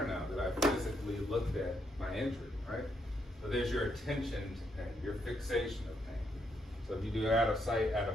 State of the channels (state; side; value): normal; both; correlation 0.77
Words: now that I physically looked at my injury, right? So there's your attention to pain, your fixation of pain. So if you do out of sight, out